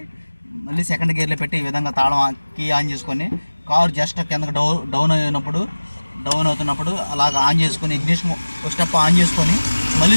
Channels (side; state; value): both; inverted; correlation -1.00